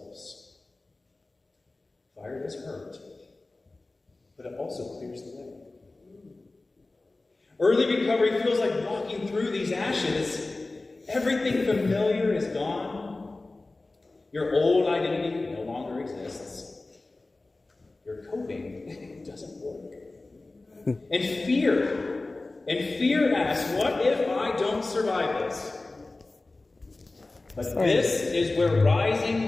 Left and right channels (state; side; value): quieter; right; 3.2 dB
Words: Fire does hurt, but it also clears the way. Early recovery feels like walking through these ashes. Everything familiar is gone. Your old identity no longer exists. Your coping doesn't work. And fear asks, what if I don't survive this? But this is where rising